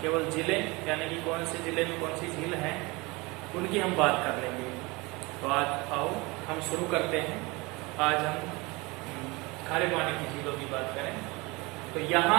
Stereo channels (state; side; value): quieter; left; 24.7 dB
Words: केवल झीलें यानी कि कौन से जिले में कौन सी झील है उनकी हम बात कर लेंगे। तो आज आओ हम शुरू करते हैं। आज हम खारे पानी की झीलों की बात करें। तो